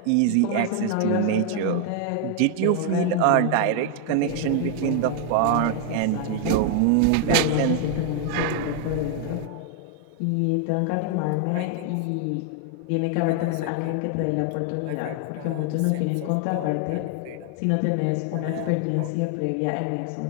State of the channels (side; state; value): both; different; correlation 0.00